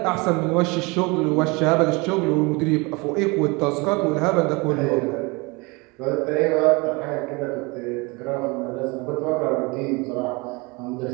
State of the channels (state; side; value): quieter; left; 26.8 dB